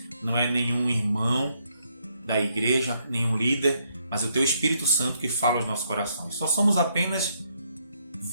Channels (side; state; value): both; inverted; correlation -0.74